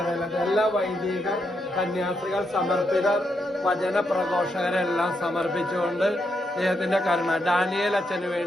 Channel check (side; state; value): both; normal; correlation 0.81